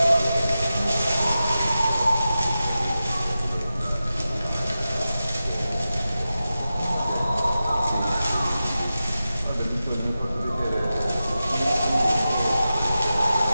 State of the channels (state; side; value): inverted; both; correlation -0.93